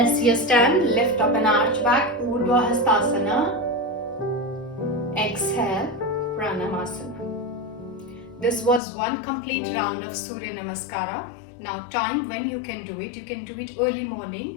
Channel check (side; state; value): right; drops out; at 8.8 s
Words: your stand, lift up and arch back, Urdhwa hastasana. Exhale, Pranamasana. This was one complete round of Surya Namaskara. Now time when you can do it early